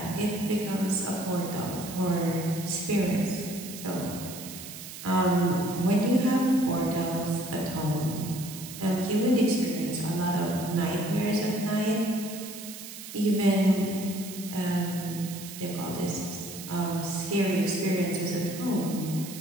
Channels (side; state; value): right; noise; hiss, 12 dB below the sound